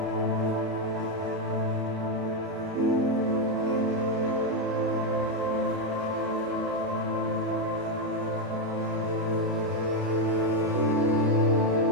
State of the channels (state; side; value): late; left; 31 ms